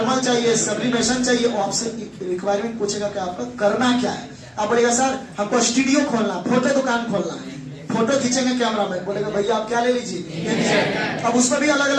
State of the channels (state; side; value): identical; both; correlation 1.00